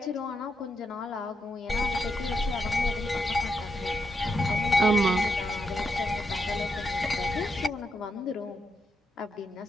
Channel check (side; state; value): both; normal; correlation 0.82